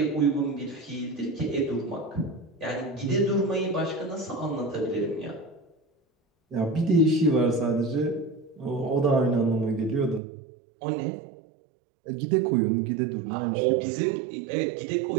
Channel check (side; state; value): left; drops out; at 10.2 s